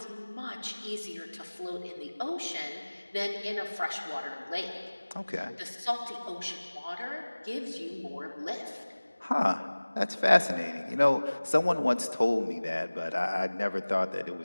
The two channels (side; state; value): both; inverted; correlation -1.00